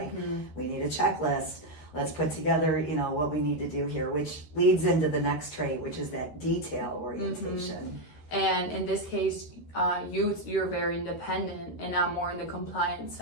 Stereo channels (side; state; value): right; late; 13 ms